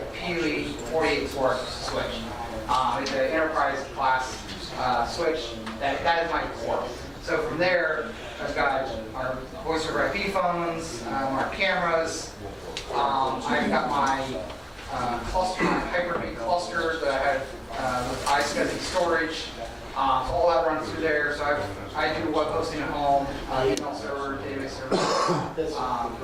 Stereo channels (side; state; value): both; identical; correlation 1.00